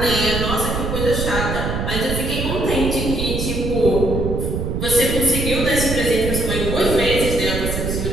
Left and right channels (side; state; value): right; noise; rumble, 2 dB below the sound